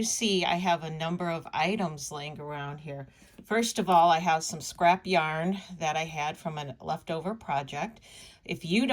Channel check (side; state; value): both; identical; correlation 1.00